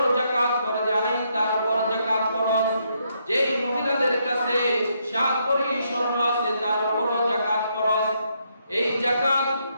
যাকাত ফরজ আইন, তার উপর যাকাত ফরজ। যেই মহিলাদের কাছে 7 ভরি স্বর্ণ আছে তার উপর যাকাত ফরজ। এই যাকাত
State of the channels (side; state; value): both; inverted; correlation -0.76